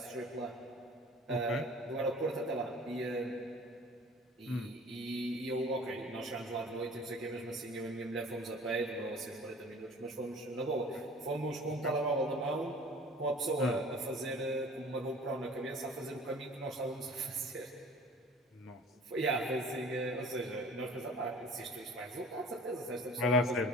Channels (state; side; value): normal; both; correlation 0.46